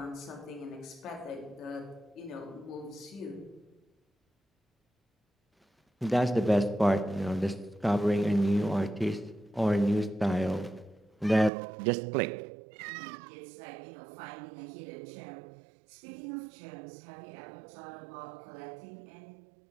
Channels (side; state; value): left; drops out; at 11.5 s